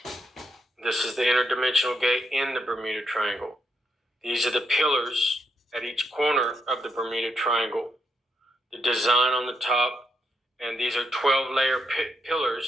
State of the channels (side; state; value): both; normal; correlation 0.79